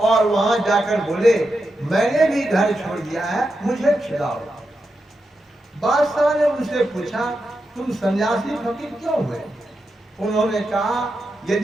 वहां जाकर बोले मैंने भी घर छोड़ दिया है, मुझे छुड़ाओ। बादशाह ने उनसे पूछा तुम सन्यासी फकीर क्यों हुए। उन्होंने कहा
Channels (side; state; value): both; normal; correlation 0.87